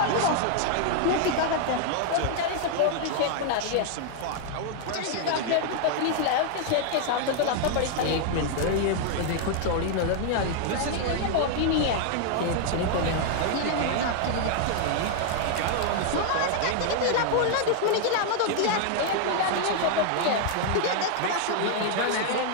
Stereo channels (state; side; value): different; both; correlation 0.00